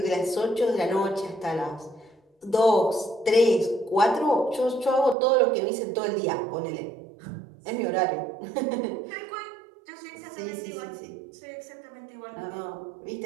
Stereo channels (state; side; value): drops out; left; at 5.2 s